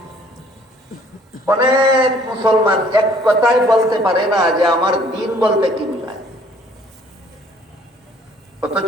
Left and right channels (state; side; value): normal; both; correlation 0.59